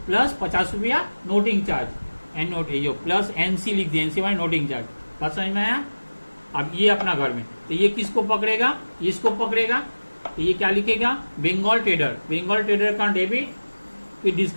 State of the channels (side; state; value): both; inverted; correlation -1.00